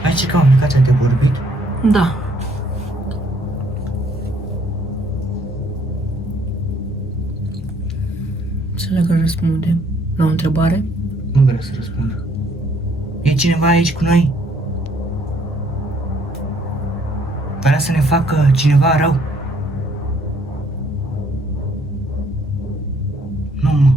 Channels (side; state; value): both; normal; correlation 0.65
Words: Hai să cam aplicația de vorbit. Da. Să dacă răspundem la o întrebare. Nu vreau să răspund. E cineva aici cu noi? Vrea să ne facă cineva rău? Nu, mă.